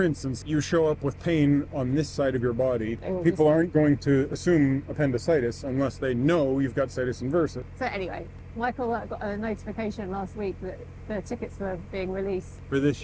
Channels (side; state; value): both; identical; correlation 1.00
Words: instance, you show up with pain on this side of your body. will People just- aren't going to assume appendicitis unless they know you've got situs inversus. So anyway, Michael got a notification last week that the tickets were being released. For this